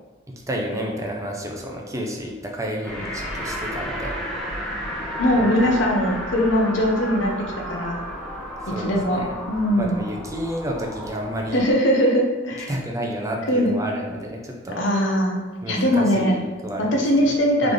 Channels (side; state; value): both; normal; correlation 0.41